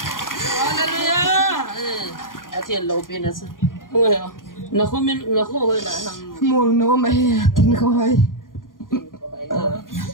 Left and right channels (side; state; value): right; late; 0.90 ms